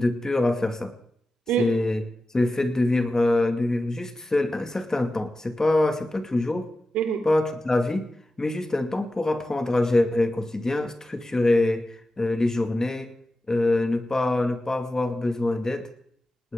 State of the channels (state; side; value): normal; both; correlation 0.93